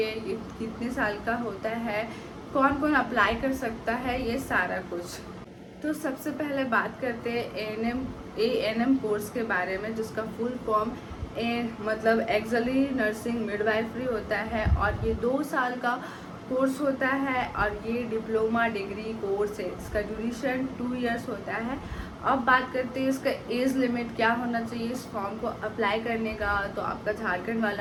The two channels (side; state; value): both; identical; correlation 1.00